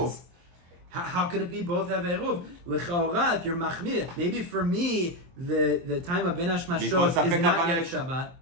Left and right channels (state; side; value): late; left; 23 ms